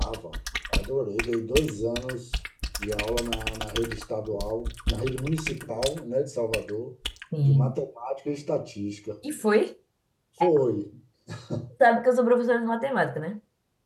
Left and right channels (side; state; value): both; identical; correlation 1.00